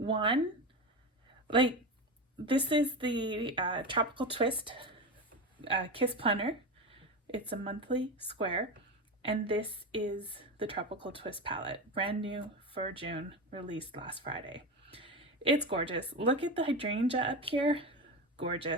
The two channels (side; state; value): both; normal; correlation 0.20